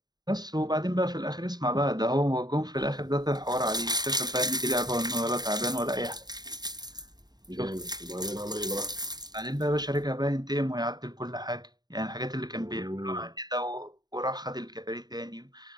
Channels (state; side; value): late; left; 0.20 ms